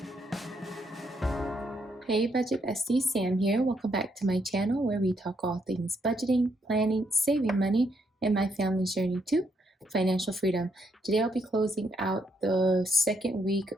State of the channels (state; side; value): normal; both; correlation 0.75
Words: Hey Budget Bestie, Sam here. Welcome back to my channel where we talk all things budgeting, planning, saving money, and my family's journey to financial freedom. Today I'll be closing out the second week